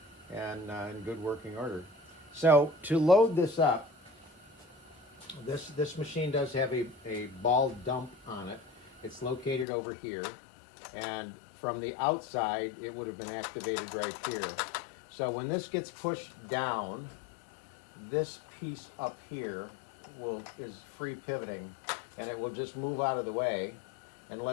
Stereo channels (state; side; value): drops out; right; at 9.7 s